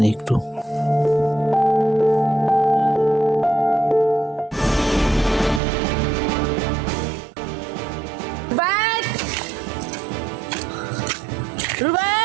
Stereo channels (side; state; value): left; drops out; at 5.6 s